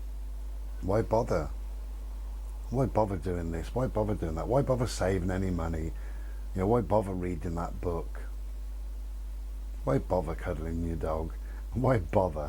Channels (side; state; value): both; identical; correlation 1.00